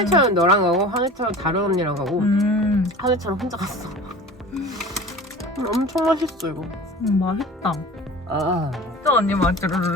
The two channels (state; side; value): normal; both; correlation 0.39